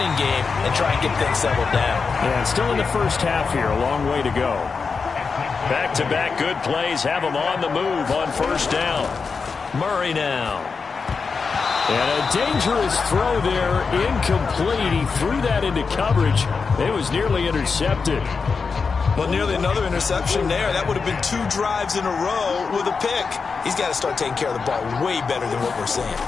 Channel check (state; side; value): quieter; right; 5.0 dB